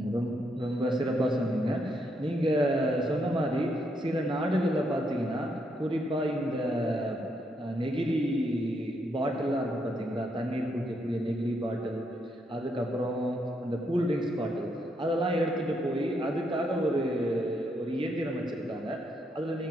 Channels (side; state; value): both; normal; correlation 0.77